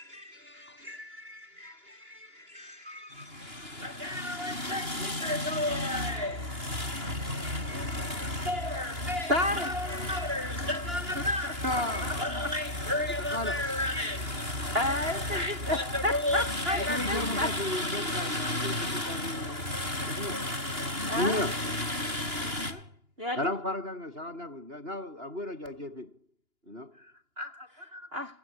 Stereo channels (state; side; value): late; left; 2.9 ms